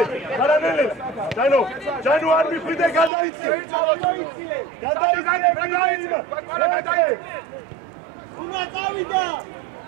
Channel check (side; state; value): left; drops out; at 3.1 s